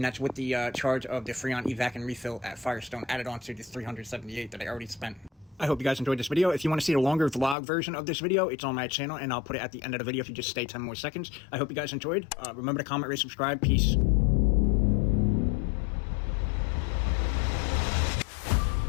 that's with the charge of the Freon evac and refill at Firestone added on to the $378 that I already spent. I hope you guys enjoyed this video. If you want to see a longer vlog version of this video, it's on my channel, and I'll put it at the end of the video if you just stay 10 more seconds. I hope you guys enjoyed. Remember to comment, rate, subscribe. Peace.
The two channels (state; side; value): drops out; right; at 7.6 s